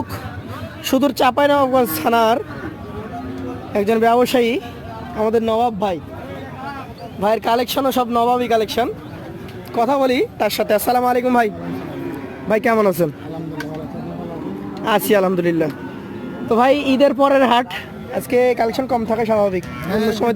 সুদূর চাঁপাইনবাবগঞ্জ থানার একজন ব্যবসায়ী, আমাদের নবাব ভাই। ভাইয়ের কালেকশনও সব নবাবই কালেকশন। কথা বলি তার সাথে। আসসালামু আলাইকুম ভাই। ভাই কেমন আছেন? আছি আলহামদুলিল্লাহ। তো ভাই, ঈদের পরের হাট, আজকে কালেকশন কম থাকে স্বাভাবিক, অন্য সময়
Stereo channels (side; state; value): both; identical; correlation 1.00